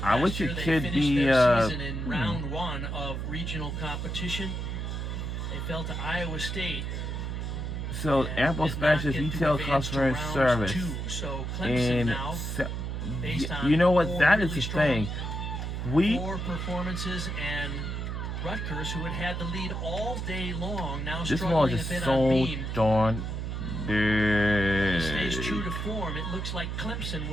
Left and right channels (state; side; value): noise; right; hum, 3 dB below the sound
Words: I Last wish year it they could finished be. their season in round 1 of regional competition. They fell to Iowa State. So, and Apple did not Specialist get to Retail advance to Customer round Service. 2. So Clemson And now, based on you know what? 4 That is really the strong thing. We. floor performances, and Rutgers, who had the lead all day long, now This one struggling a is bit on so beam. darn Stays true big. to form. It looks like Clemson